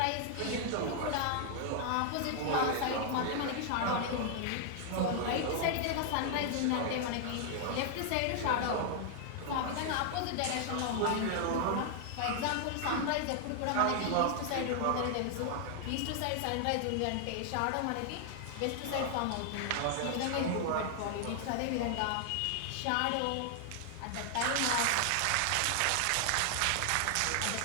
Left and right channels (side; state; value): both; different; correlation 0.00